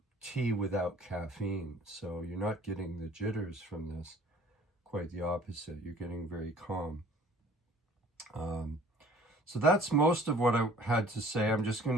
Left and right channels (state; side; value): normal; both; correlation 0.52